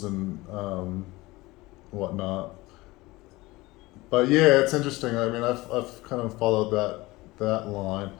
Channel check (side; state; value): right; quieter; 20.7 dB